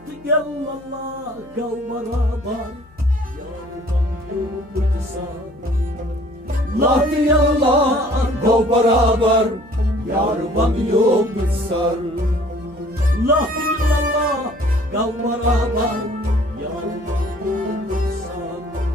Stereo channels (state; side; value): noise; left; hum, 27 dB below the sound